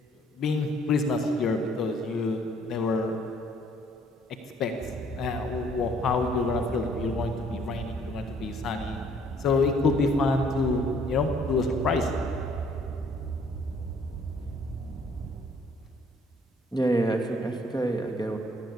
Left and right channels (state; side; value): normal; both; correlation 0.62